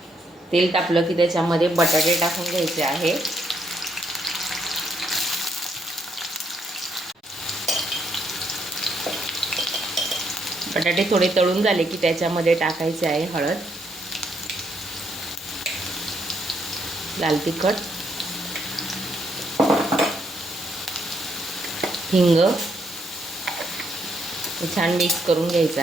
तेल तापलं की त्याच्यामध्ये बटाटे टाकून घ्यायचे आहे. बटाटे थोडे तळून झाले की त्याच्यामध्ये टाकायचे आहे हळद, लाल तिखट, हिंग. छान मिक्स करून घ्यायचं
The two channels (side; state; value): both; normal; correlation 0.74